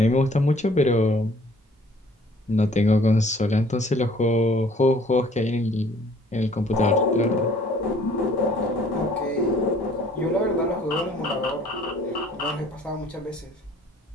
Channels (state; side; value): normal; both; correlation 0.56